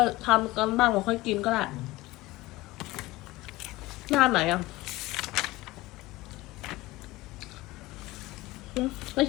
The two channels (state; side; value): quieter; right; 19.5 dB